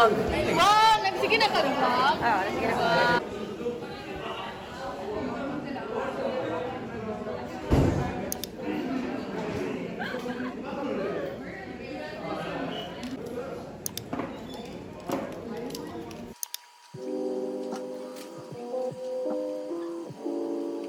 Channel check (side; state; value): both; identical; correlation 1.00